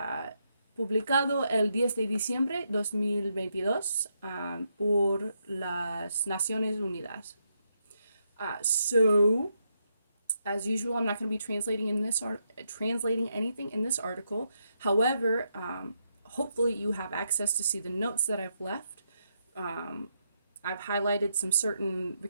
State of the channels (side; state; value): both; inverted; correlation -0.80